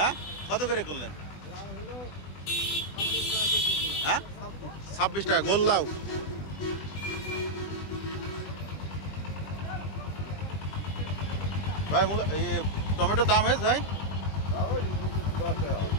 কত করে করলেন? হ্যাঁ, 26 টাকা গোল লাউ। ভাই টমেটোর দাম হয়েছে ভাই?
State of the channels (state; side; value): late; right; 20 ms